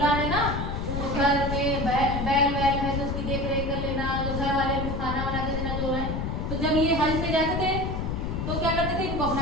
है ना, घर में बैल वैल है तो उसकी देख रेख कर लेना, जो घर वाले खाना बना के देना जो है। तो जब ये हज पे जाते थे तो क्या करते थे? इनको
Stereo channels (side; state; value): left; noise; rumble, 2 dB below the sound